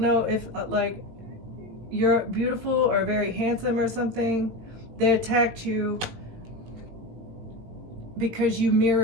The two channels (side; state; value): left; late; 18 ms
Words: know if you're beautiful or very handsome or something. They attacked you because you